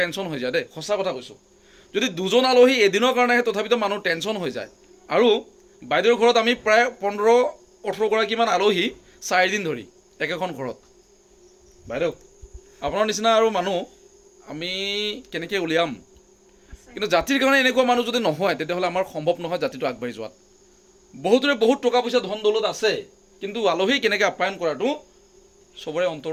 হৈ যায় দেই, সঁচা কথা কৈছোঁ। যদি দুজন আলহী এদিনৰ কাৰণে আহে তথাপিতো মানুহ টেনশ্যন হৈ যায়। আৰু বাইদেউৰ ঘৰত আমি প্ৰায় 15-18 গৰাকীমান আলহী 4 দিন ধৰি একেখন ঘৰত। বাইদেউ আপোনাৰ নিচিনা আৰু মানুহ আমি কেনেকৈ উলিয়াম, কিন্তু জাতিৰ কাৰণে এনেকুৱা মানুহ যদি নহয় তেতিয়াহ'লে আমাৰ সম্ভৱ নহয় জাতিটো আগবাঢ়ি যোৱাত। বহুতৰে বহুত টকা পইচা ধন দৌলত আছে, কিন্তু আলহী কেনেকৈ আপ্যায়ন কৰাটো চবৰে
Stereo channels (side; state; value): both; identical; correlation 1.00